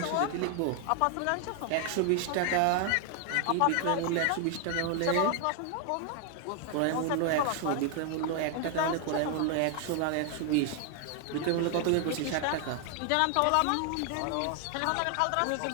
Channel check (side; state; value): both; different; correlation 0.00